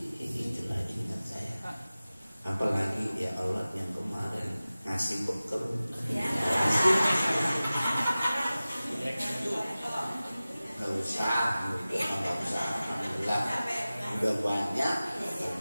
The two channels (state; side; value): inverted; both; correlation -0.97